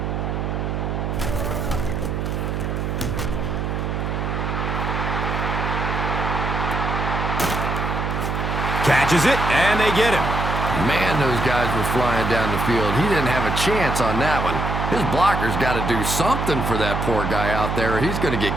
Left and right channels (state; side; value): noise; right; hum, 2 dB below the sound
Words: Catches it, and they get him. Man, those guys were flying down the field. He didn't have a chance on that one. His blocker's got to do something for that poor guy out there, or he's going to